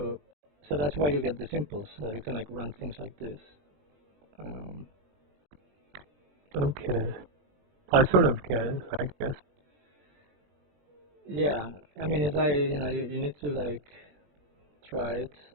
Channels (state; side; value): late; left; 20 ms